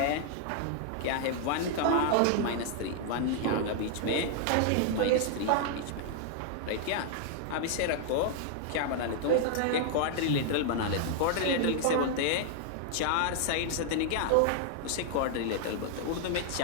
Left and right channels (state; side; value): different; both; correlation 0.00